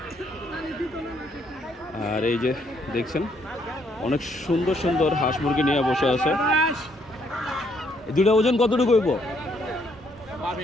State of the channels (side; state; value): both; normal; correlation 0.70